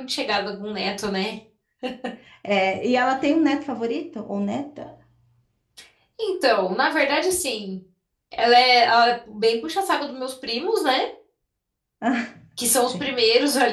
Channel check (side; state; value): both; identical; correlation 1.00